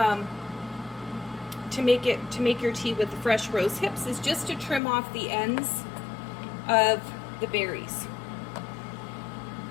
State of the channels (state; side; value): drops out; right; at 4.8 s